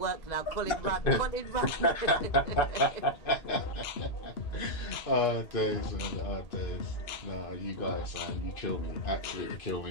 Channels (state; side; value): late; right; 2.5 ms